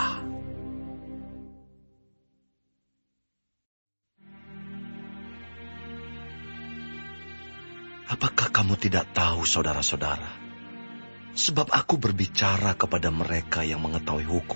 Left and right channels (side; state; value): both; inverted; correlation -1.00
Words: Apakah kamu tidak tahu, saudara-saudara? Sebab aku berbicara kepada mereka yang mengetahui